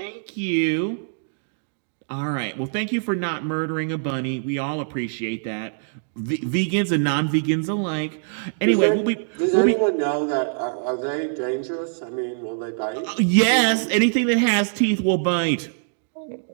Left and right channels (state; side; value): silent; left; digital silence